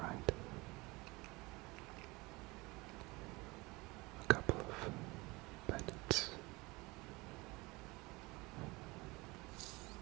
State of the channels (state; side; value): quieter; left; 23.6 dB